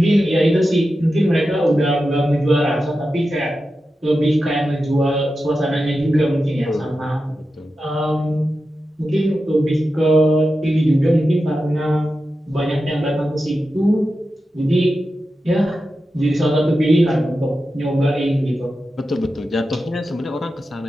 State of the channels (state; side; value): normal; both; correlation 0.91